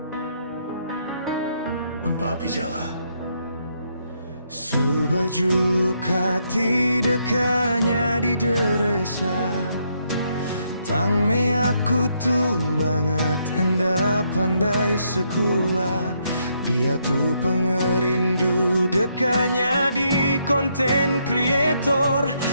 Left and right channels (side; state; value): both; inverted; correlation -0.75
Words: Mempapi jalan. Subaju kati dekanya di deresa. Tang me aku tuh banget enda pandai sekolah. Dia tuh pengerindu dekanya di konten kreator.